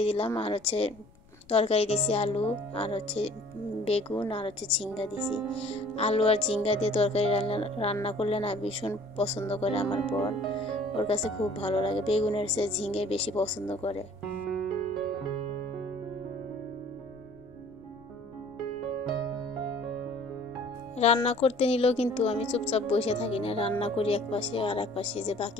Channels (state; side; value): noise; left; rumble, 26 dB below the sound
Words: দিলাম, আর হচ্ছে তরকারি দিছি আলু আর হচ্ছে বেগুন আর হচ্ছে ঝিঙ্গা দিছি। আলু আর ঝিঙ্গা দিয়ে তরকারি রান্না করলে না ভীষণ পছন্দ করে আমার বর, ওর কাছে খুব ভালো লাগে, বেগুনের চেয়ে ঝিঙ্গে বেশি পছন্দ করে। রান্না করতে নিলেও কিন্তু আমি চুপচাপ বসে থাকি না, রান্না করি এক পাশে, আর এক পাশে যে